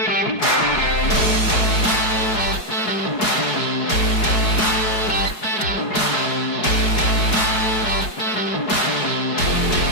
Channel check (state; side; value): late; right; 4.7 ms